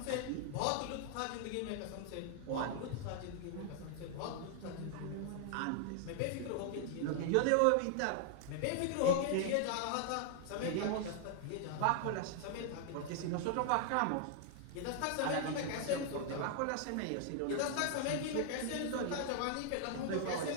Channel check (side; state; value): both; different; correlation 0.00